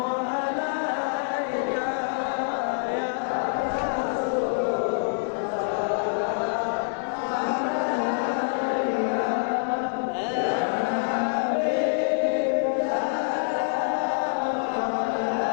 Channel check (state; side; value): silent; right; digital silence